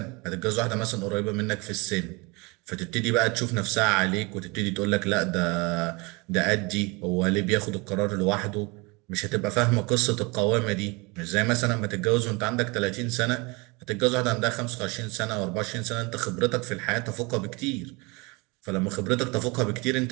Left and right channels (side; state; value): left; quieter; 27.2 dB